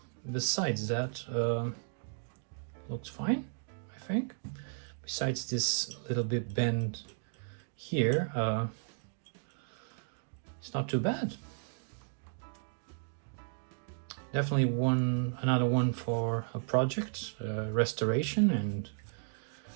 besides that, looks fine, I think. Besides this little bit bend here, it's not too bad. Definitely another one for a project, restoration,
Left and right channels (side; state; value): left; silent; digital silence